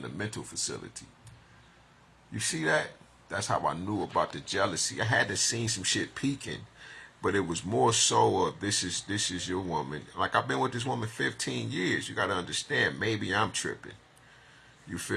a mental facility. You see that? That's how I knew about the jealousy. I had to see some shit peaking, but it was more so of this is your woman. Like I've been with this woman 15 years. You got to understand, maybe I'm tripping. You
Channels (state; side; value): identical; both; correlation 1.00